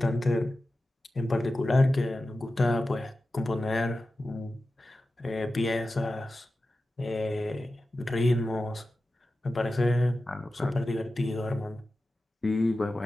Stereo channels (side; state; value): both; normal; correlation 0.93